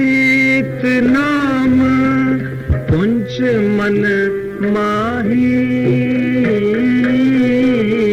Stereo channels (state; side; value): identical; both; correlation 1.00